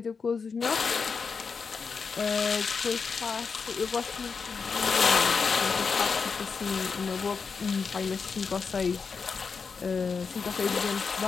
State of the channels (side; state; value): right; quieter; 5.3 dB